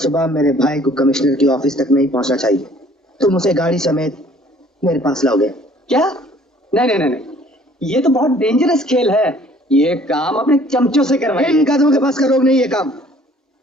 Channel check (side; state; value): both; normal; correlation 0.56